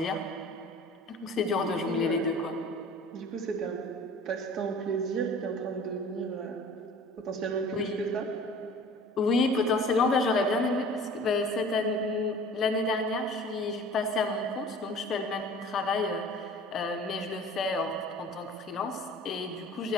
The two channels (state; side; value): normal; both; correlation 0.45